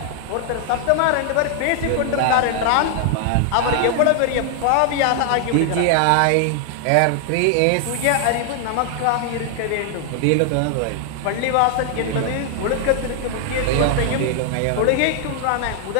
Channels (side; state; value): both; different; correlation 0.00